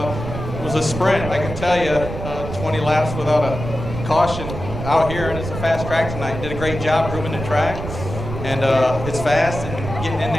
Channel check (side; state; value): right; noise; rumble, 7 dB below the sound